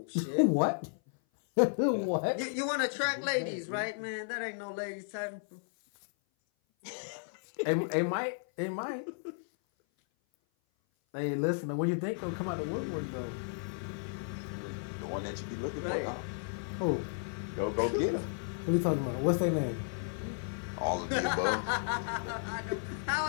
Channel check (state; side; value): silent; right; 55 dB below the other